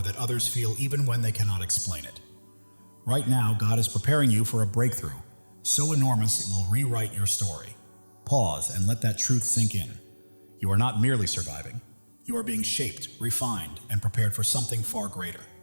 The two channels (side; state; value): both; inverted; correlation -1.00